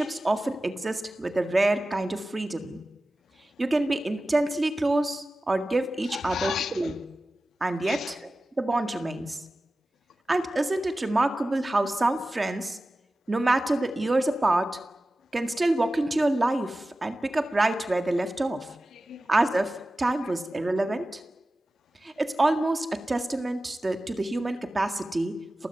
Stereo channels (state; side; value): normal; both; correlation 0.95